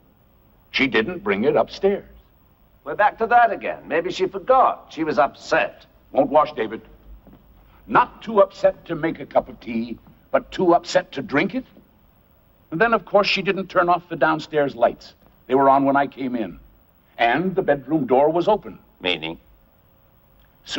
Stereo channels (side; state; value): both; identical; correlation 1.00